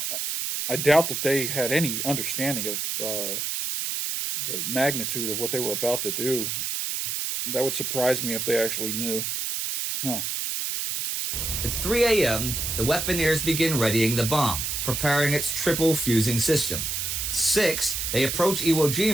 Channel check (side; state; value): right; noise; hiss, 2 dB below the sound